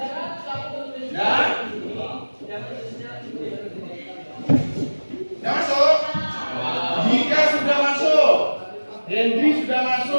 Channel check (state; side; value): inverted; both; correlation -1.00